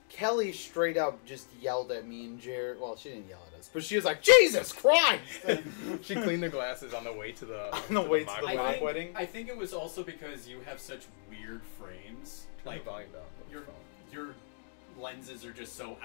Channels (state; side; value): silent; right; digital silence